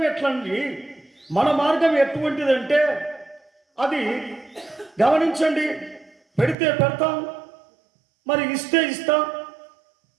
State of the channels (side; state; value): left; drops out; at 6.6 s